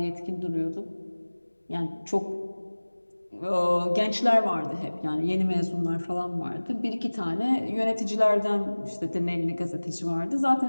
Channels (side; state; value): both; inverted; correlation -1.00